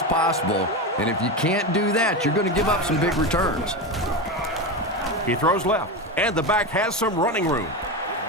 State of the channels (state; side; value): normal; both; correlation 0.18